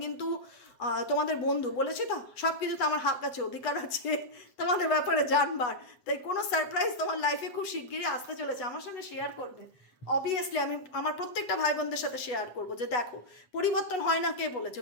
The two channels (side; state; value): right; late; 8.1 ms